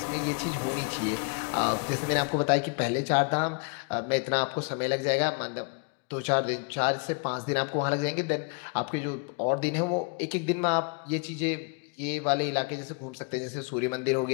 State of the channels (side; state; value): right; quieter; 35.2 dB